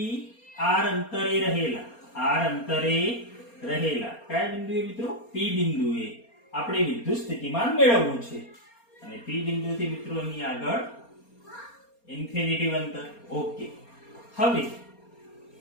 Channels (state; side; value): late; right; 4.3 ms